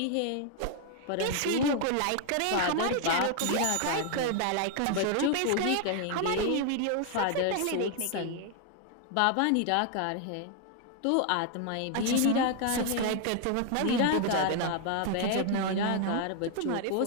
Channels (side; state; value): both; different; correlation 0.00